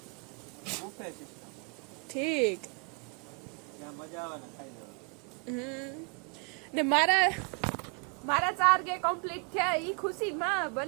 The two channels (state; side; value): quieter; left; 37.5 dB